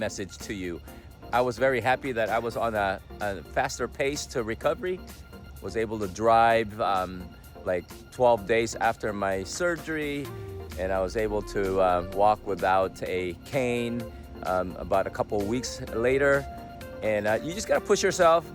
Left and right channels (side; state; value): both; identical; correlation 1.00